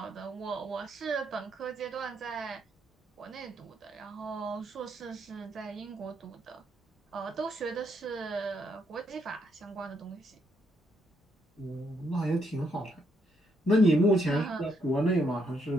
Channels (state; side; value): normal; both; correlation 0.75